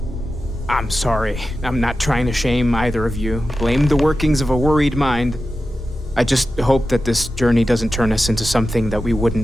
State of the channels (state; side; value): normal; both; correlation 0.92